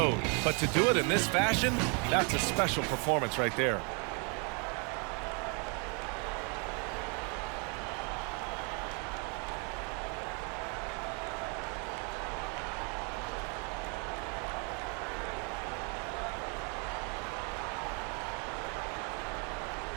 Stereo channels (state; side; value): quieter; left; 35.4 dB